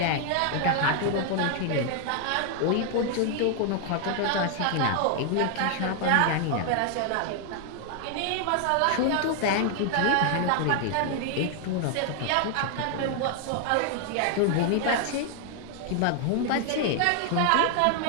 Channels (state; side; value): different; both; correlation 0.00